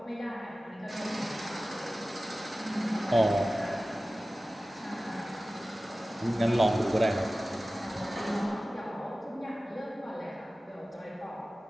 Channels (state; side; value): normal; both; correlation 0.96